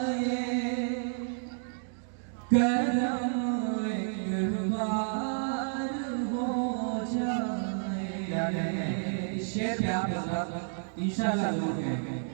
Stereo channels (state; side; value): silent; left; digital silence